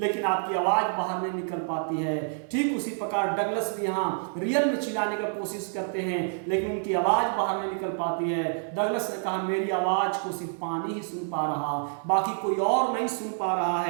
आपकी आवाज बाहर नहीं निकल पाती है। ठीक उसी प्रकार डगलस भी यहाँ रियल में चिल्लाने का कोशिश करते हैं, लेकिन उनकी आवाज बाहर नहीं निकल पाती है। डगलस ने कहा मेरी आवाज को सिर्फ पानी ही सुन पा रहा, बाकी कोई और नहीं सुन पा रहा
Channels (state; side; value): silent; left; digital silence